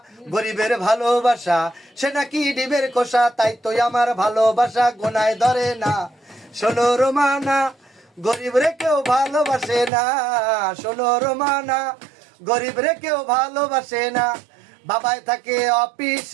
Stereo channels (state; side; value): drops out; left; at 9.9 s